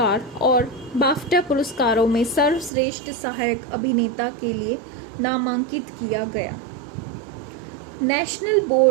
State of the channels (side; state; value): left; drops out; at 2.7 s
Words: और बाफ्टा पुरस्कारों में सर्वश्रेष्ठ सहायक अभिनेता के लिए नामांकित किया गया। नेशनल